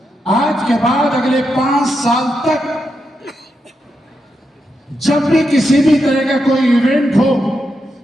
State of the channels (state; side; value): normal; both; correlation 0.84